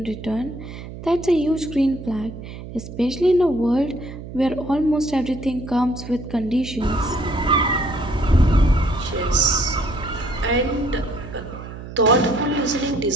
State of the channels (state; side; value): noise; right; hum, 12 dB below the sound